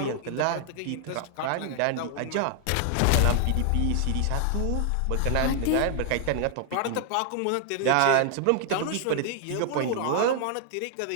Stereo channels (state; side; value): different; both; correlation 0.00